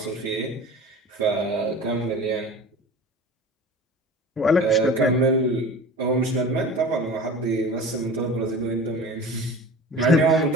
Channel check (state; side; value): normal; both; correlation 0.37